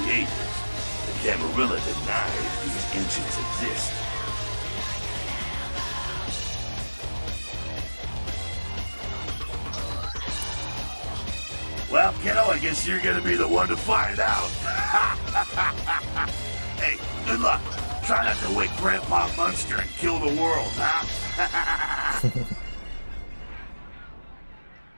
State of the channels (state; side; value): inverted; both; correlation -1.00